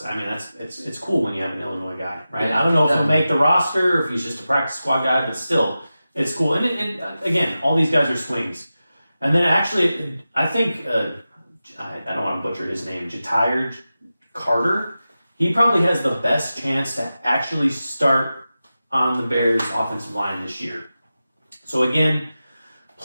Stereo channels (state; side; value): inverted; both; correlation -0.93